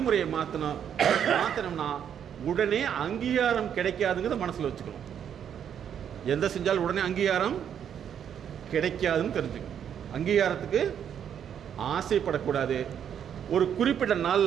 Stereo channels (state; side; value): quieter; left; 8.8 dB